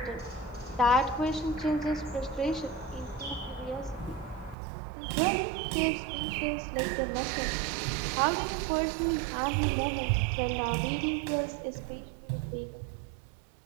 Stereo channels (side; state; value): left; drops out; at 4.5 s